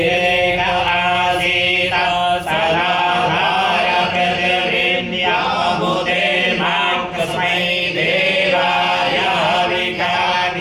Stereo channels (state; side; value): identical; both; correlation 1.00